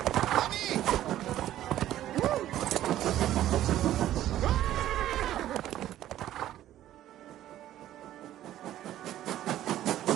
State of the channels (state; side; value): quieter; left; 12.9 dB